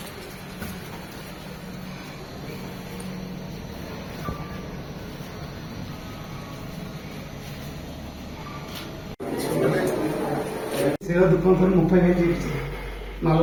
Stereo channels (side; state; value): both; identical; correlation 1.00